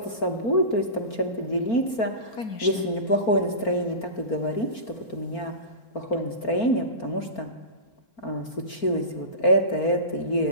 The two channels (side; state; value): right; late; 4.4 ms